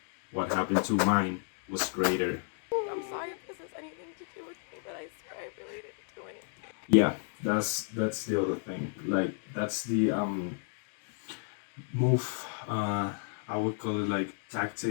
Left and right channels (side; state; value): right; silent; 56 dB below the other